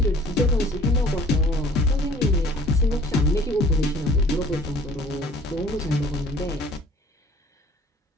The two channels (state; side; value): normal; both; correlation 0.52